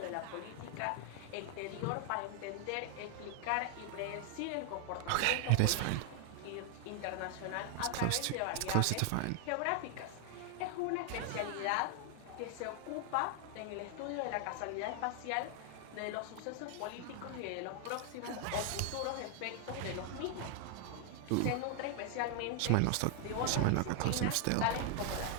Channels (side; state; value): both; different; correlation 0.00